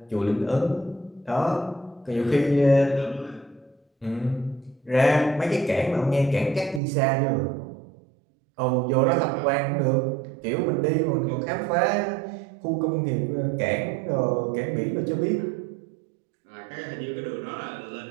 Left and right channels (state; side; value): drops out; left; at 6.8 s